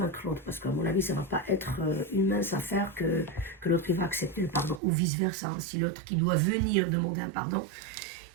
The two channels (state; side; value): drops out; left; at 4.8 s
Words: l'autre, parce qu'à mon avis, ça ne va pas être une mince affaire que l'autre va accepter le pardon, ou vice-versa. Hein. Si l'autre qui doit venir demander un pardon,